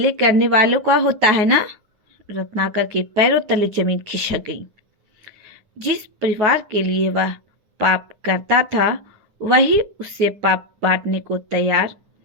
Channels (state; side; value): late; left; 9.6 ms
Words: करने वालों का होता है ना? रत्नाकर के पैरों तले जमीन खिसक गई। जिस परिवार के लिए वह पाप करता था, वही उससे पाप बांटने को तैयार